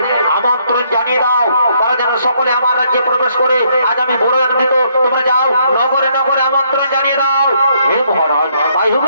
আমন্ত্রণ জানিয়ে দাও, তারা যেন সকলে আমার রাজ্যে প্রবেশ করে। আজ আমি বড় আনন্দিত, তোমরা যাও নগরে আমন্ত্রণ জানিয়ে দাও। হে মহারাজ, তাই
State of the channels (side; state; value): both; inverted; correlation -0.70